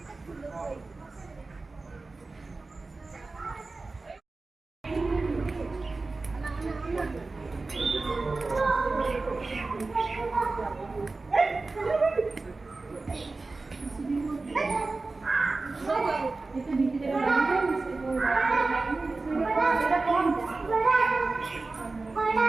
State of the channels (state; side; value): quieter; left; 3.6 dB